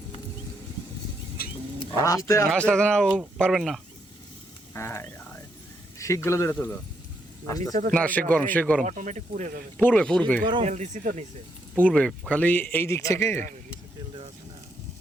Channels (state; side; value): normal; both; correlation 0.77